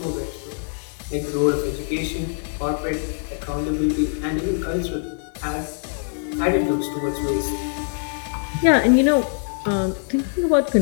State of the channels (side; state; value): right; silent; 63 dB below the other